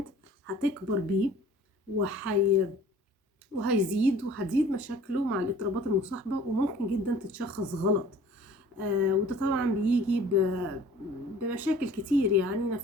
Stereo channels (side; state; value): both; normal; correlation 0.50